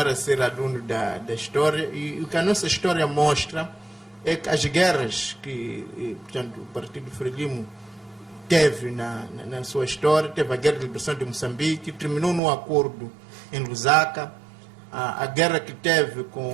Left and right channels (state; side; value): drops out; left; at 12.4 s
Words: a ser aluno da história, e o que a nossa história mostra é que as guerras que, portanto, o Partido Frelimo teve na sua história, teve a Guerra de Liberação de Moçambique, terminou num acordo em Lusaka, a guerra que teve